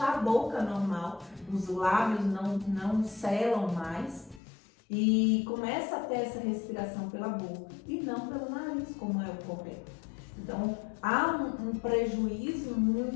a boca normal, os lábios não selam mais e começa a ter essa respiração pela boca e não pelo nariz, como é o correto. Então, há um prejuízo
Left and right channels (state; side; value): drops out; right; at 4.4 s